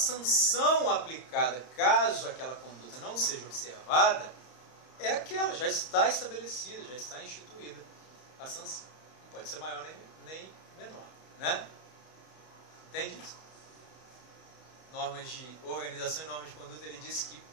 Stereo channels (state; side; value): late; right; 32 ms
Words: aplicada, caso aquela conduta não seja observada, é aquela, já está estabelecida, já está instituída a sanção. Não pode ser maior nem menor, né? Entende isso? Normas de organização e normas de conduta, ele diz que